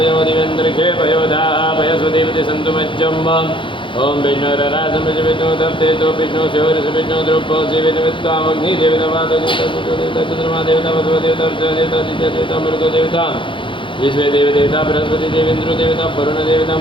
दिवेन्द्रखे पयो दापयस्वदेवति सन्तु मज्जम् ॐ विष्णुररासं विष्णु तप्तेतो विष्णु शिवरस विष्णु द्रुपो शिवेदमित्वामग्निदेवता देवता वसुदेवता देवता देवता मृतो देवता विश्व देव देवता बृहस्पति देवेन्द्र देवता वरुण देवता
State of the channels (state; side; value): late; right; 0.24 ms